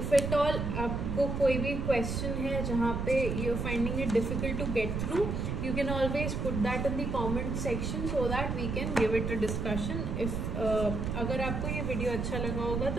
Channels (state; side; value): noise; right; rumble, 2 dB below the sound